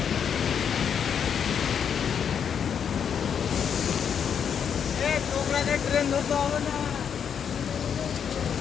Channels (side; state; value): right; quieter; 7.7 dB